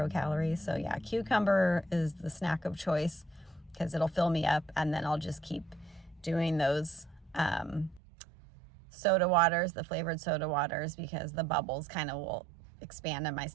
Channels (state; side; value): drops out; left; at 8.0 s